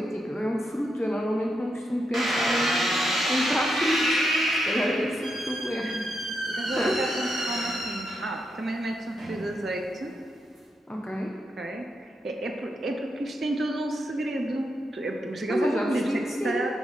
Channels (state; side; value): normal; both; correlation 0.83